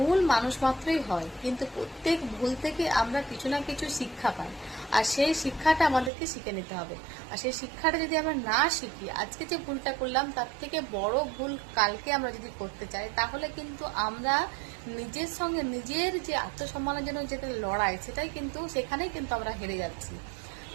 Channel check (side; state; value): left; drops out; at 6.1 s